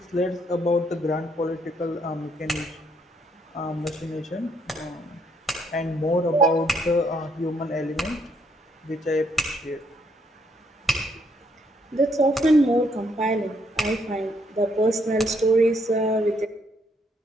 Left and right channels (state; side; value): normal; both; correlation 0.71